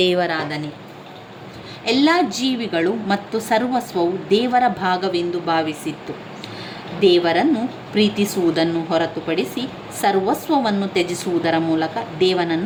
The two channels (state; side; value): identical; both; correlation 1.00